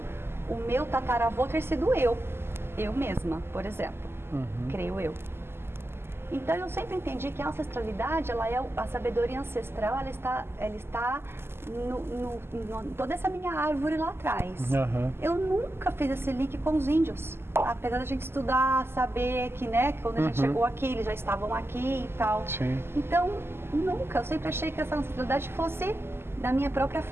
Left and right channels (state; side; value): late; left; 0.12 ms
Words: o meu tataravô ter sido eu mesma, por exemplo, creio eu. Então eu sempre entendi que a ancestralidade, ela é a sabedoria ancestral, ela está toda essa minha árvore lá atrás. Eu nunca fiz esse link com os índios, apesar da gente estudar, saber que, né, que quando a gente chegou aqui, eles já estavam aqui e tal. Sim. Então, nunca, eu sempre achei que essa ancestralidade fosse da minha própria